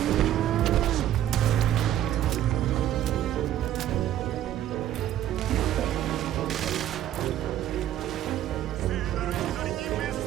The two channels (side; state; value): left; quieter; 12.1 dB